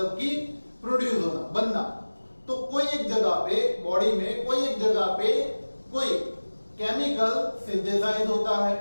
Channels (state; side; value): inverted; both; correlation -1.00